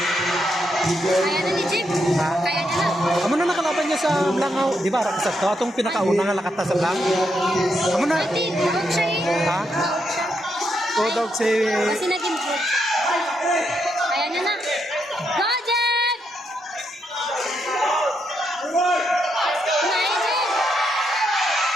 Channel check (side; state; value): both; normal; correlation 0.80